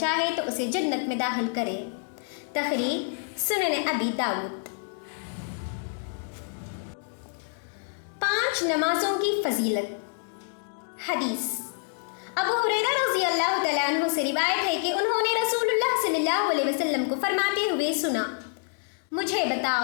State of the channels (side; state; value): right; silent; 58 dB below the other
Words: تو اسے جنت میں داخل کرے۔ تخریج سنن ابی داؤد۔ 5 نمازوں کی فضیلت۔ حدیث ابو ہریرہ رضی اللہ تعالیٰ عنہ سے روایت ہے کہ انہوں نے رسول اللہ صلی اللہ علیہ وسلم کو فرماتے ہوئے سنا مجھے